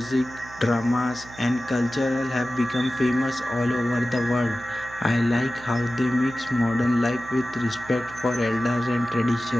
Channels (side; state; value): right; noise; hum, 19 dB below the sound